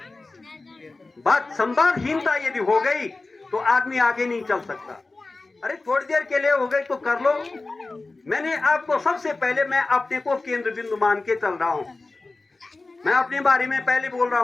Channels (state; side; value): quieter; right; 3.4 dB